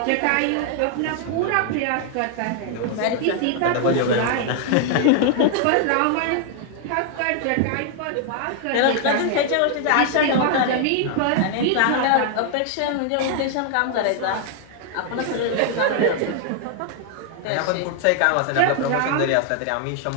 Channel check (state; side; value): different; both; correlation 0.00